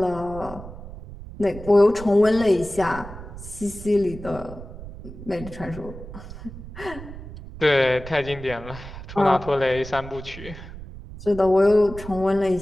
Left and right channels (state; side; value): noise; right; rumble, 13 dB below the sound